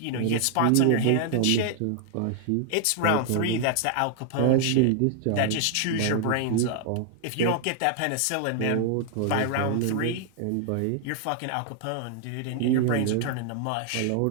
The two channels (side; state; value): both; different; correlation 0.00